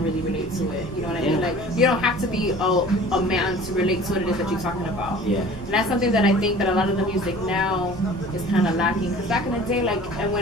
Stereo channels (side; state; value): both; normal; correlation 0.45